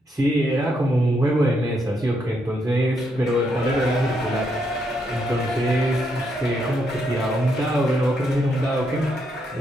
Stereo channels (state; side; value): normal; both; correlation 0.77